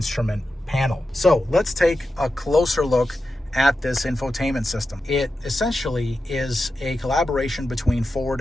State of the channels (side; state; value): both; normal; correlation 0.91